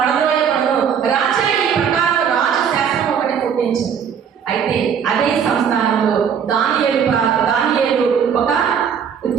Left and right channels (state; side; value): quieter; left; 7.5 dB